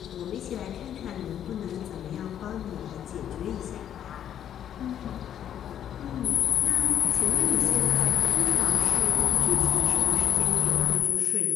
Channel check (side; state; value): right; quieter; 10.0 dB